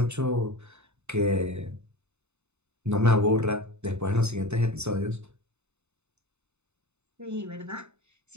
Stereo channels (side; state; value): left; late; 0.82 ms